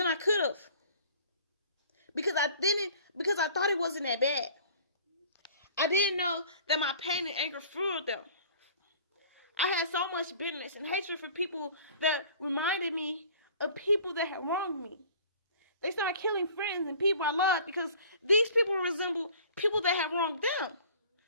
I could have. Because I thought it wasn't that bad. I didn't know that my pain and anger fueled them. I had so much bitterness and hatred for people that reminded me of people that had wronged me. They started killing friends and people I loved because these people resembled people that had wronged them.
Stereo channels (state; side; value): inverted; both; correlation -0.48